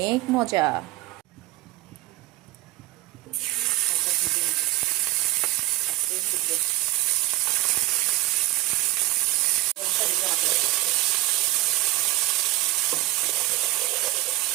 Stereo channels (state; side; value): quieter; left; 18.9 dB